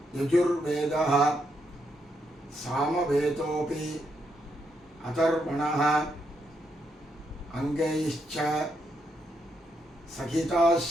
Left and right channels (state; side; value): normal; both; correlation 0.78